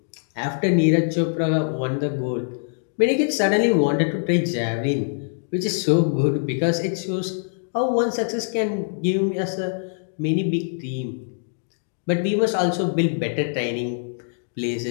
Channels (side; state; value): right; silent; digital silence